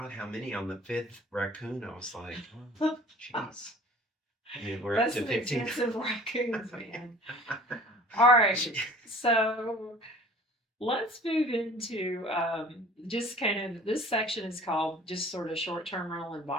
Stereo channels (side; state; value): both; normal; correlation 0.47